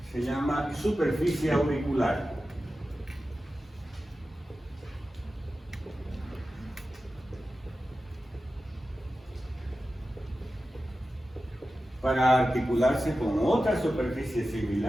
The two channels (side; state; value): both; normal; correlation 0.93